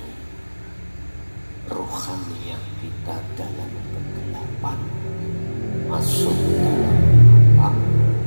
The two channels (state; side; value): inverted; both; correlation -1.00